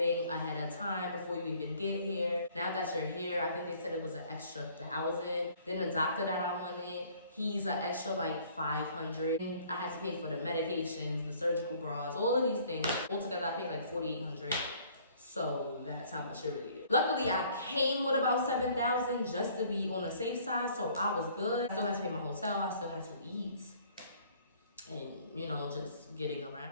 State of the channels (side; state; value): both; inverted; correlation -0.57